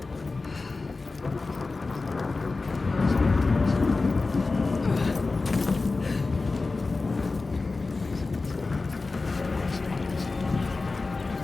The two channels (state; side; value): quieter; right; 3.7 dB